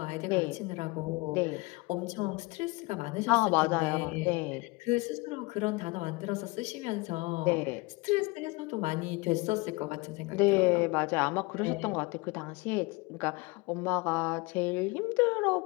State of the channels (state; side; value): quieter; right; 25.0 dB